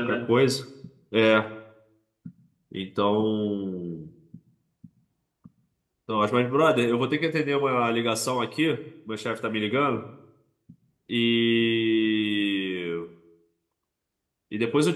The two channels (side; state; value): both; identical; correlation 1.00